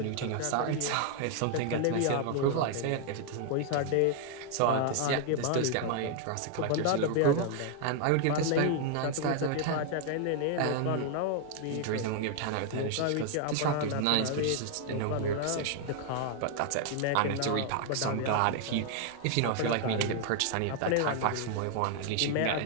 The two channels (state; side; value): different; both; correlation 0.00